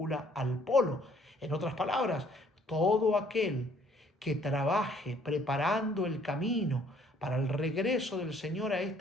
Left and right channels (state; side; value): normal; both; correlation 0.61